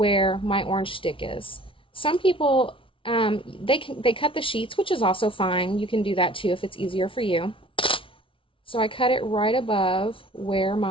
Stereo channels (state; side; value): late; right; 0.25 ms